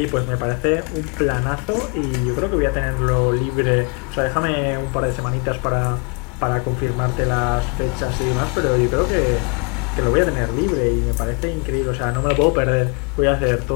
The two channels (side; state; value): right; quieter; 35.3 dB